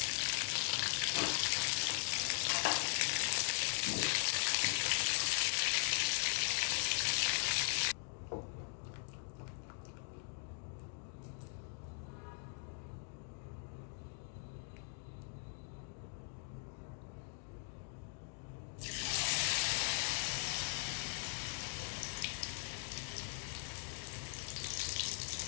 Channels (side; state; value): right; silent; 51 dB below the other